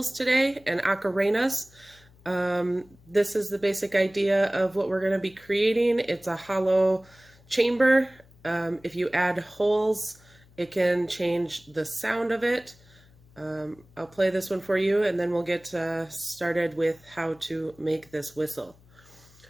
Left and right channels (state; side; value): noise; left; hum, 27 dB below the sound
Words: today and ocarenas. This is the basic idea of what we're going to be creating. It's a hollow chamber. If you add holes, it can change the sound of it. I'll play this one for you and then we'll get started with how to make this whistle.